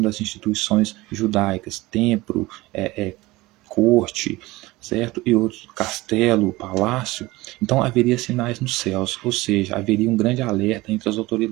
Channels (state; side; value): quieter; left; 20.0 dB